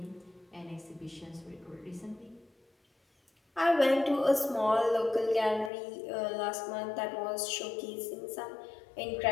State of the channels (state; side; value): drops out; right; at 5.7 s